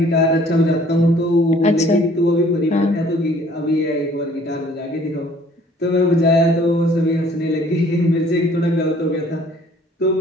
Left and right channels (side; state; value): both; normal; correlation 0.56